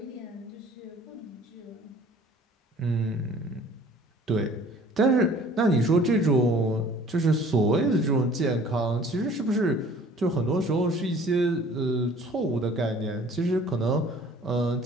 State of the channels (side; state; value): both; normal; correlation 0.51